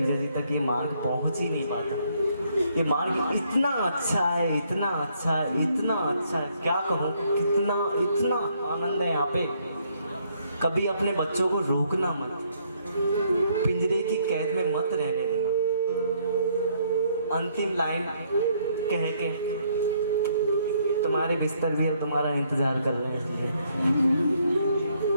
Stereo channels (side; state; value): both; inverted; correlation -0.69